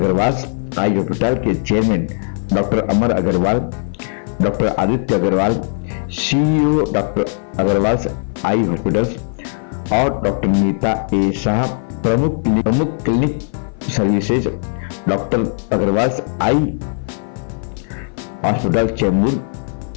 आई हॉस्पिटल के chairman doctor Amar Agarwal, doctor Aditya Agarwal, CEO doctor Agarwal eye hospital और डॉक्टर नीता ए शाह, प्रमुख clinic services doctor Agarwal eye hospital Chembur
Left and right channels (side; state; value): right; silent; 55 dB below the other